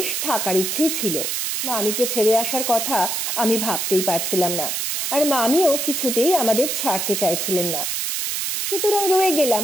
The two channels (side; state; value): right; noise; hiss, 1 dB below the sound